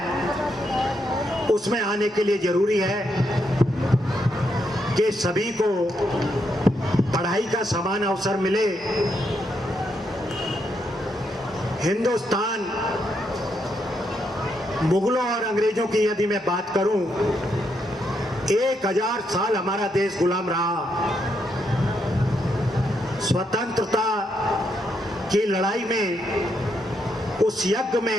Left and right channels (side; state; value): both; normal; correlation 0.79